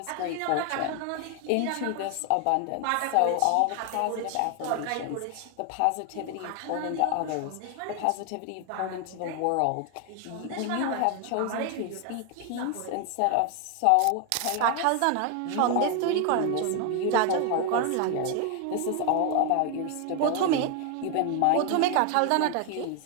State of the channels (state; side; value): different; both; correlation 0.01